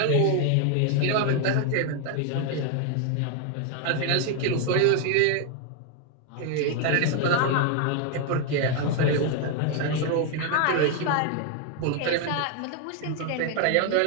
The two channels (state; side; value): different; both; correlation 0.01